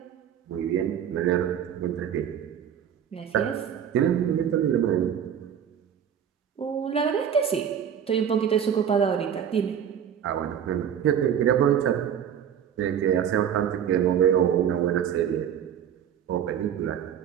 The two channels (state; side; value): quieter; left; 8.9 dB